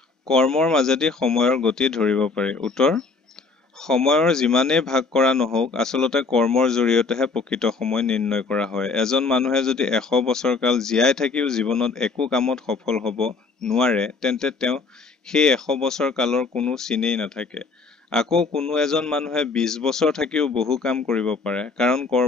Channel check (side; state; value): right; quieter; 4.3 dB